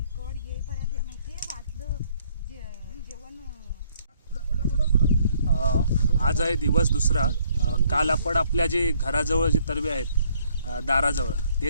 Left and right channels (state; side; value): inverted; both; correlation -0.66